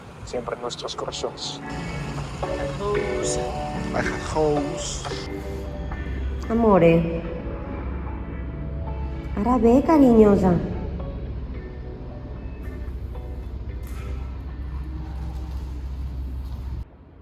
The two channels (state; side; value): identical; both; correlation 1.00